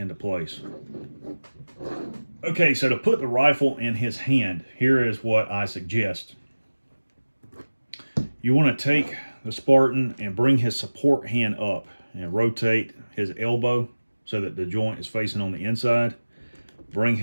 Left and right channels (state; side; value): inverted; both; correlation -1.00